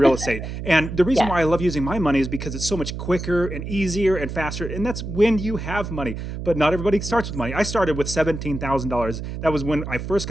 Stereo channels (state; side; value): noise; right; hum, 7 dB below the sound